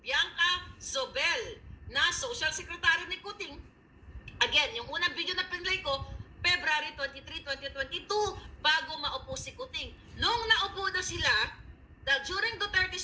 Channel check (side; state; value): both; identical; correlation 1.00